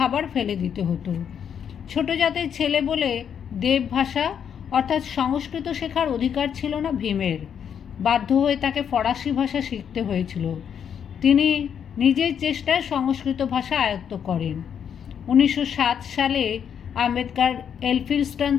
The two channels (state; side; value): quieter; right; 8.1 dB